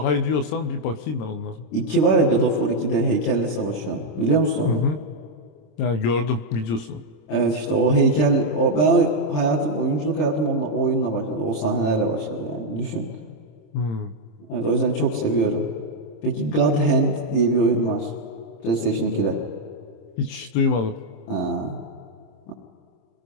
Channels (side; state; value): right; late; 26 ms